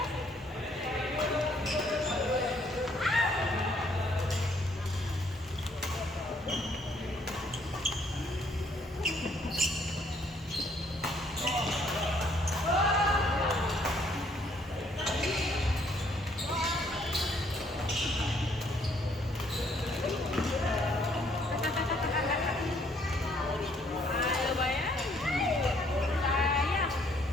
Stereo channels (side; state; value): both; normal; correlation 0.66